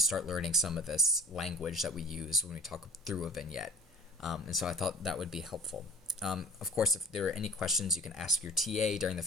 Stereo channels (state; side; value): normal; both; correlation 0.44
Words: start learning some of this language that we use when we talk through a vignette. And so I thought that would be helpful. Of course, if there are any questions, you can ask your TA during the